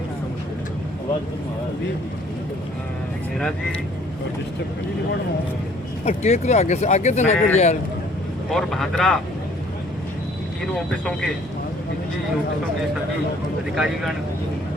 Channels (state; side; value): normal; both; correlation 0.58